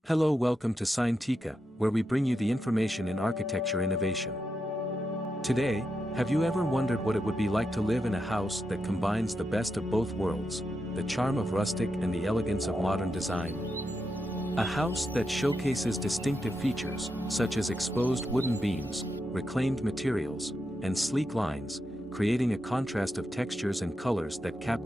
Hello, welcome to Scientica, where we bring you the information in architecture innovation. Today, have you ever wondered what it would be like to live in a house that combines the best of both worlds, the charm of rustic and the elegance of modern design? A house that showcases distinctive features, such as exposed wooden beams, reclaimed materials, and sleek lines, creating a contrast of textures and colors that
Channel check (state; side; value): normal; both; correlation 0.86